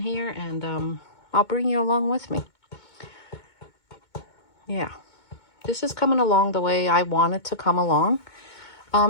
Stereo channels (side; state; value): right; late; 2.2 ms